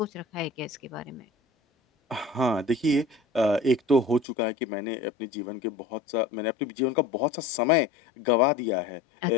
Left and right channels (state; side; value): drops out; right; at 4.2 s